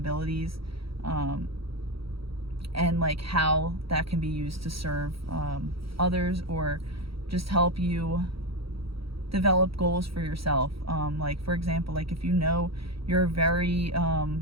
and like how that can be used to serve others, or just help you develop goals for yourself. Like, for example, like if you know you're a very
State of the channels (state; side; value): late; left; 0.75 ms